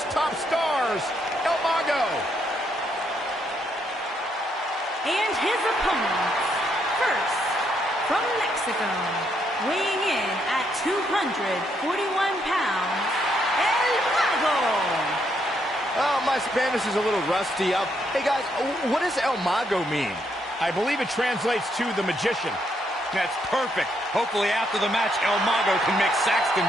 top stars, El Mago. And his opponents, first, from Mexico, weighing in at 241 pounds, El Mago. Oh, my Spanish is a little rusty. Hey, guys, what does El Mago mean? I believe it translates to the magician. That's perfect. Hopefully after the match, El Mago can make Saxton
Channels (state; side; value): normal; both; correlation 0.75